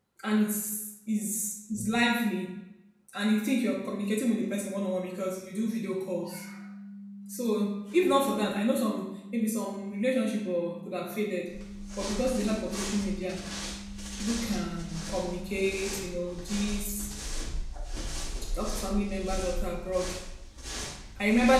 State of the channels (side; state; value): both; identical; correlation 1.00